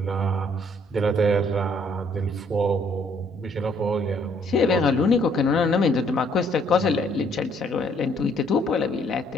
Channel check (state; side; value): normal; both; correlation 0.65